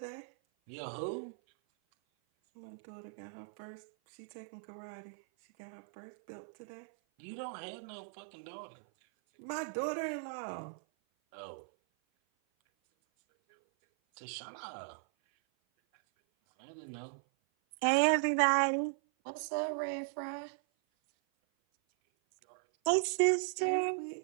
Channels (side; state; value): left; silent; 53 dB below the other